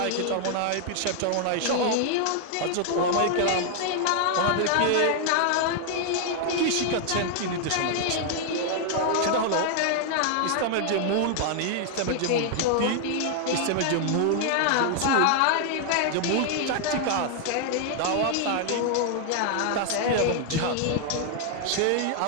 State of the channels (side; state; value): both; different; correlation 0.00